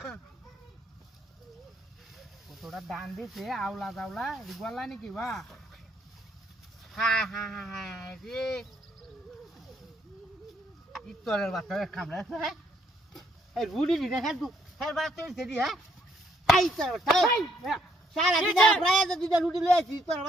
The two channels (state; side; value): normal; both; correlation 0.70